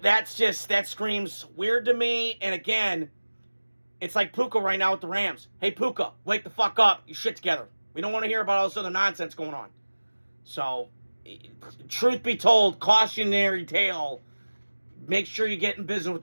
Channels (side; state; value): both; inverted; correlation -1.00